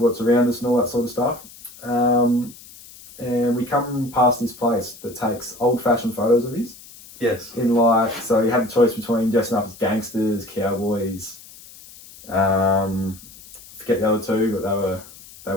around us and all that sort of stuff. And we come past this place that takes old-fashioned photos of his. Yes. In so you had the choice between dressing up as gangsters, cowboys. Forget the other two, but they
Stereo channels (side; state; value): left; noise; hiss, 20 dB below the sound